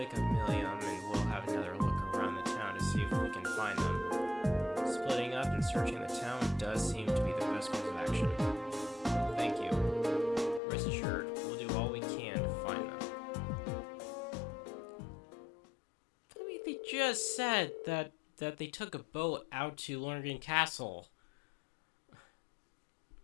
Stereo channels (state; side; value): drops out; right; at 10.6 s